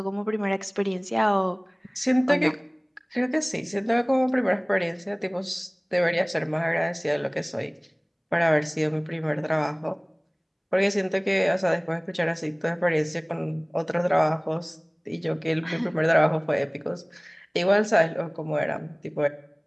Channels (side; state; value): both; identical; correlation 1.00